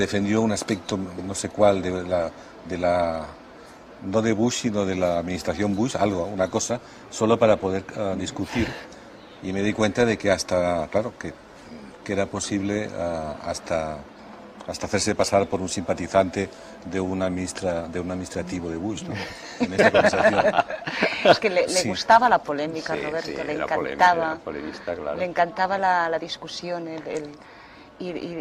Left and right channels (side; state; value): both; identical; correlation 1.00